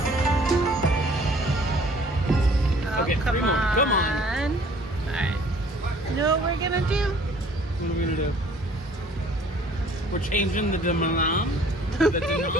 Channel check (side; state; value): both; normal; correlation 0.54